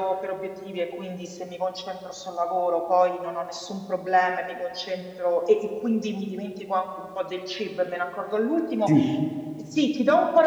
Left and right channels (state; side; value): identical; both; correlation 1.00